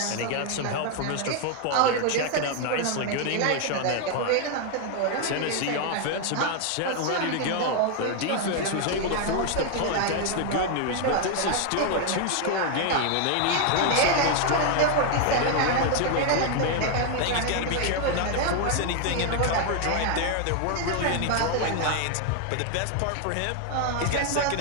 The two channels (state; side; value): different; both; correlation 0.01